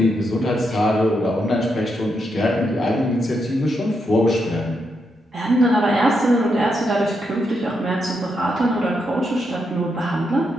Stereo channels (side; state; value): both; normal; correlation 0.81